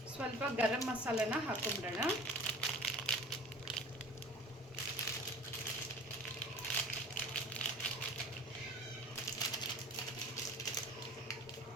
ಸ್ವಲ್ಪ ಗರಂ ಮಸಾಲೆನ ಹಾಕೊಂಡ್ಬಿಡೋಣ.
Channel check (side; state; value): both; normal; correlation 0.42